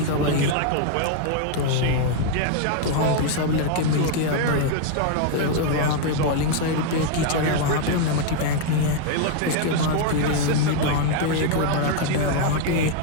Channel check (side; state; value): both; different; correlation 0.00